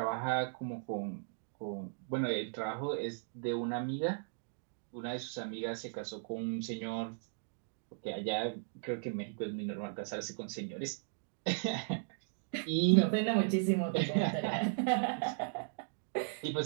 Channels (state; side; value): silent; left; digital silence